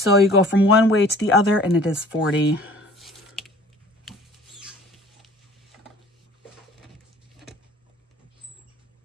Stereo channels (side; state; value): both; normal; correlation 0.49